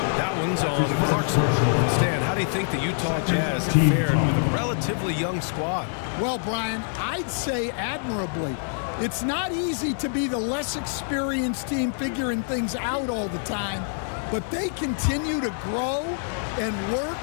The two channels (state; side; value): silent; right; digital silence